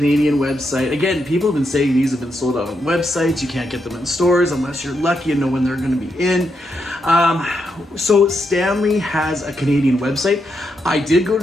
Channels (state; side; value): normal; both; correlation 0.82